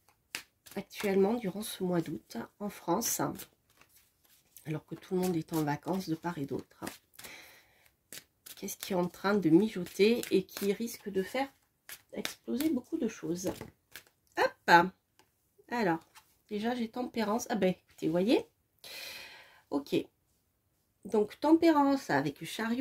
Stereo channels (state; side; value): identical; both; correlation 1.00